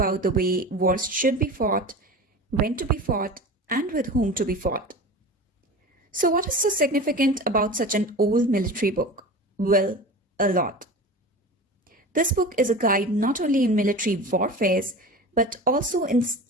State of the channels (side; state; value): both; normal; correlation 0.32